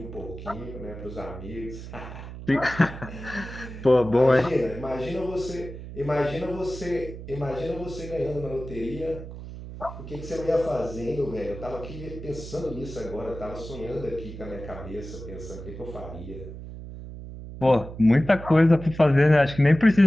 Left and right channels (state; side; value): noise; right; hum, 11 dB below the sound